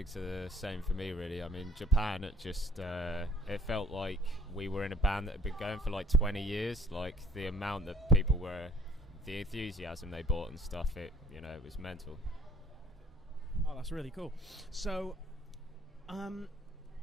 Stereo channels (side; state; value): both; normal; correlation 0.57